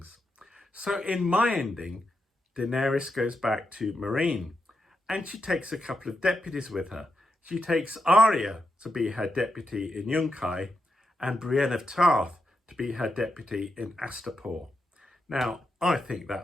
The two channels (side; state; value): both; normal; correlation 0.85